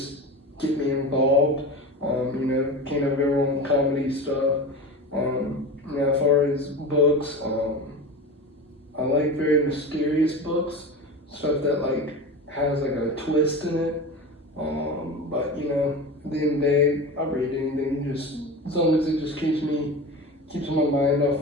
get me involved. Can't have everyone comedy stuff. As far as books, I like very mysterious books, stuff that like has like a twist in it. But at the end of the day, I'll read anything just as long as it just keeps my mind off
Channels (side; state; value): both; normal; correlation 0.28